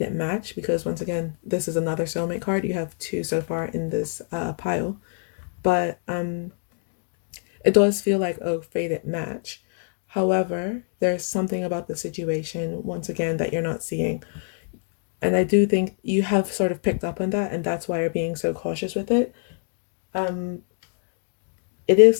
match, because once again this is another soulmate card. You have two so far in this pile, but it does feel like a fated match. However, there's something about the situation once again that you're not seeing, and I do think you have sort of picked up on that, and that's why you're being so cautious with it. um it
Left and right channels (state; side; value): silent; right; 62 dB below the other